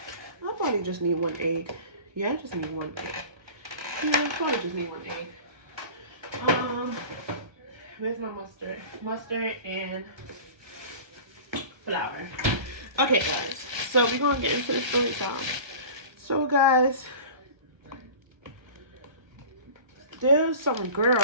probably just need 1 egg. Yeah, I just need 1 egg. Yeah, I probably just need 1 egg. Where's my mustard? Mustard and flour. Okay, guys. So we're gonna get into the story time. So, guys, there's some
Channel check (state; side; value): late; left; 1.2 ms